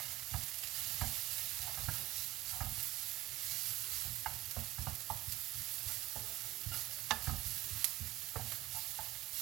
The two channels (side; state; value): left; quieter; 17.4 dB